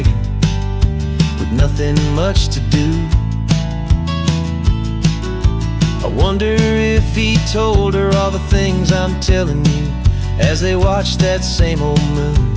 with nothing much to do. I wonder if he told her all the things I'm telling you as they watched that same old moon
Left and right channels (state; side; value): identical; both; correlation 1.00